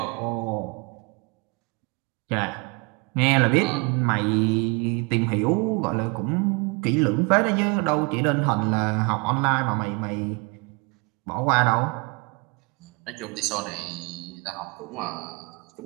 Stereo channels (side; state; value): left; quieter; 30.5 dB